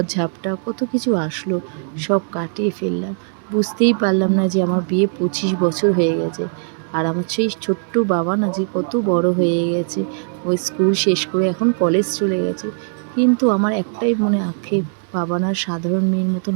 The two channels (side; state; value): left; silent; digital silence